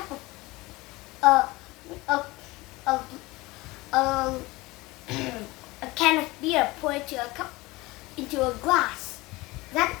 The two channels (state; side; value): quieter; right; 21.5 dB